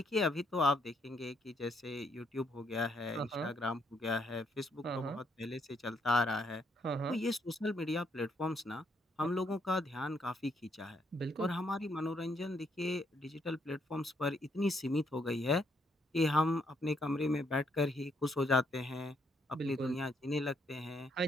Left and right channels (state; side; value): normal; both; correlation 0.73